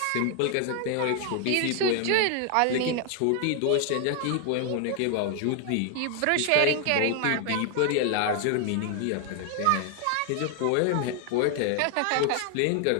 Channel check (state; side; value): different; both; correlation 0.00